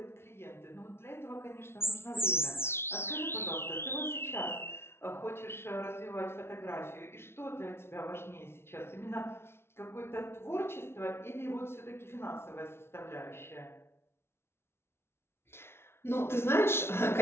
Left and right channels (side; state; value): right; late; 0.12 ms